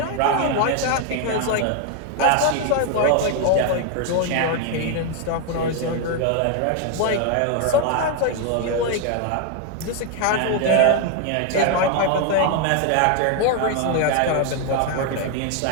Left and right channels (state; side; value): different; both; correlation 0.01